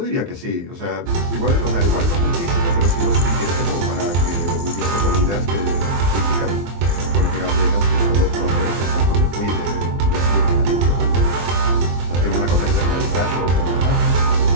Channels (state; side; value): late; left; 23 ms